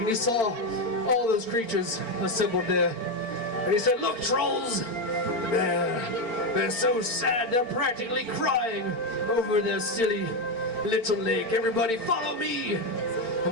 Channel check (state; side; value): late; right; 4.5 ms